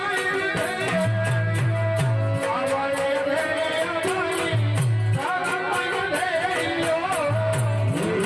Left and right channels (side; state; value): both; identical; correlation 1.00